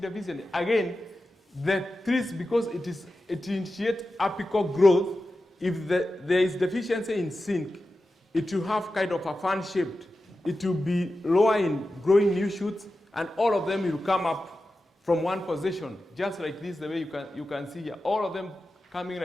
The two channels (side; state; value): both; normal; correlation 0.92